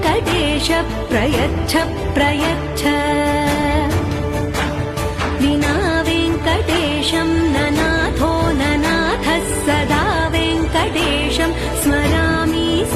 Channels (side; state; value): both; identical; correlation 1.00